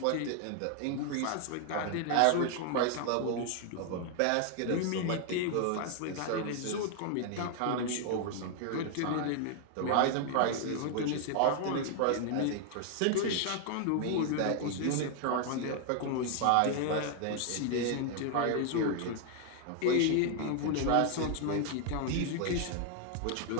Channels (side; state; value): both; different; correlation 0.00